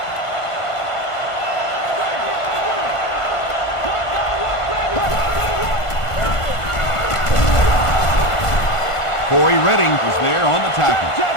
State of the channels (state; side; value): late; right; 1.5 ms